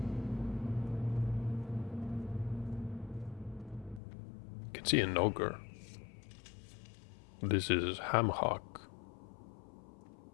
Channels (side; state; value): right; drops out; at 4.0 s